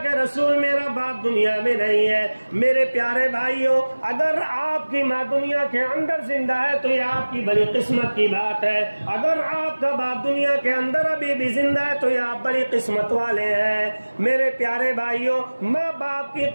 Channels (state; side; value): inverted; both; correlation -1.00